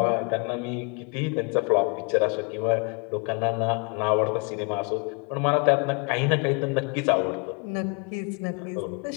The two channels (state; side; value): quieter; right; 34.5 dB